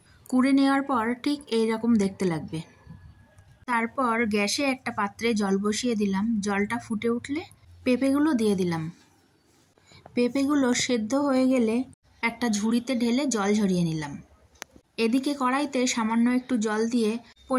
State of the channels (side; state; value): both; identical; correlation 1.00